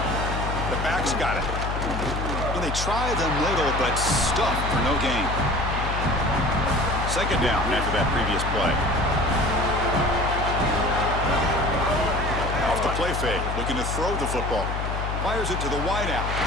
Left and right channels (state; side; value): noise; left; hum, 3 dB below the sound